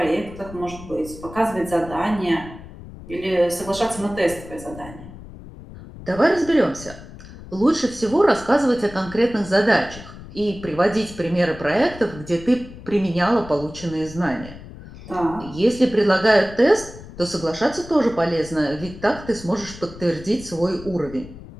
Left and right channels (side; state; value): left; noise; rumble, 16 dB below the sound